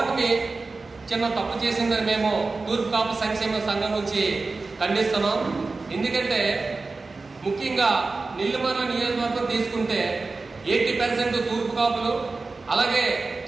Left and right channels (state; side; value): quieter; left; 3.8 dB